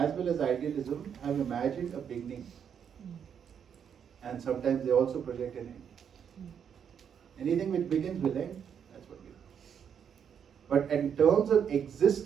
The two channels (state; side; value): quieter; left; 7.9 dB